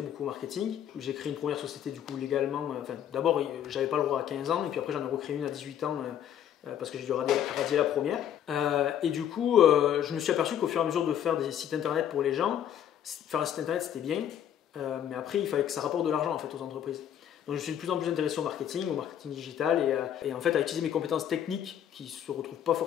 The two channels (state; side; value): quieter; right; 10.0 dB